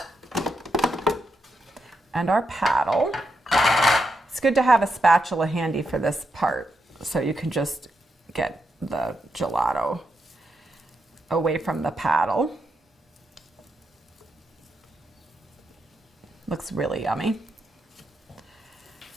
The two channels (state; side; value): normal; both; correlation 0.83